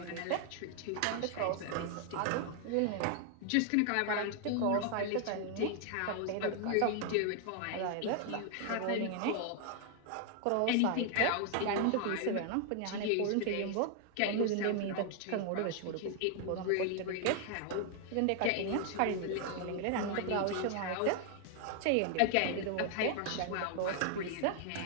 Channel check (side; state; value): both; different; correlation 0.00